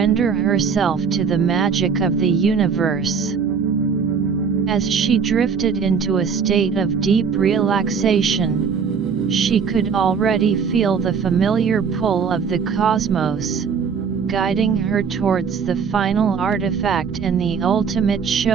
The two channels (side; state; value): left; quieter; 6.2 dB